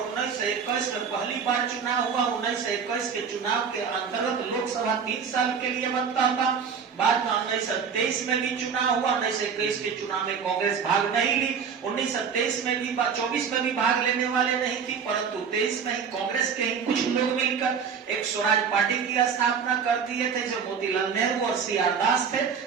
1921 में पहली बार चुनाव हुआ। 1921 के चुनाव के अंतर्गत लोकसभा 3 साल के लिए बनता था। बाद में 1923 में भी चुनाव हुआ। 1921 के चुनाव में कांग्रेस भाग नहीं ली। 1923 में भी 24 में भी भाग लेने वाले नहीं थी, परंतु 23 में ही कांग्रेस के ही कुछ लोग मिलकर एक स्वराज पार्टी की स्थापना कर दिए थे, जो मोतीलाल नेहरू और सी.आर. दास थे।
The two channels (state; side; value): quieter; left; 6.5 dB